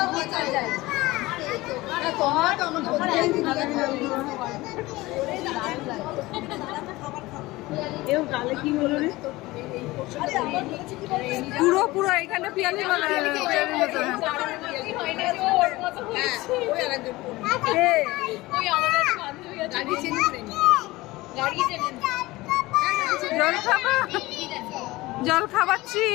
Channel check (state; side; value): quieter; right; 19.8 dB